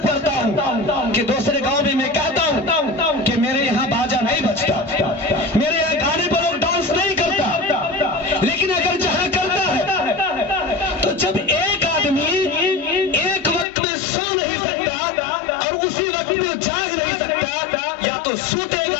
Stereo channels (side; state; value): right; drops out; at 13.7 s